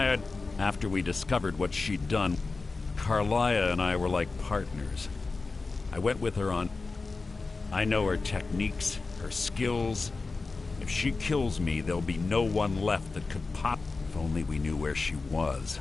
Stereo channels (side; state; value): right; quieter; 3.9 dB